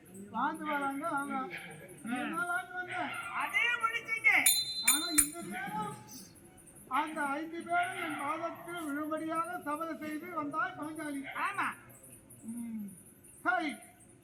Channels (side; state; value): both; identical; correlation 1.00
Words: வாழ்ந்து வராங்க. அதே முடிச்சீங்க. ஆனா இந்த நேரம் அந்த 5 பேரும் என் பாதத்தில் விழும்படியாக சபதம் செய்து வந்தாய் பாஞ்சாலி. ஆமா. சரி,